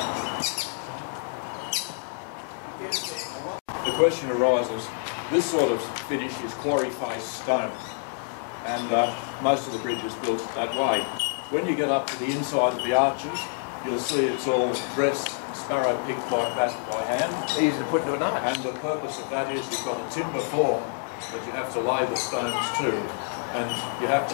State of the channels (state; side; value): silent; right; 60 dB below the other